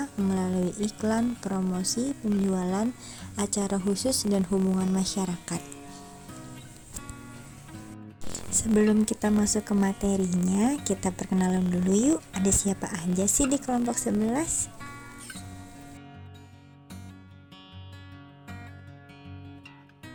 melalui iklan, promosi, penjualan, acara khusus, dan hubungan masyarakat. Sebelum kita masuk ke materinya, kita perkenalan dulu yuk. Ada siapa aja sih di kelompok 11?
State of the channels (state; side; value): identical; both; correlation 1.00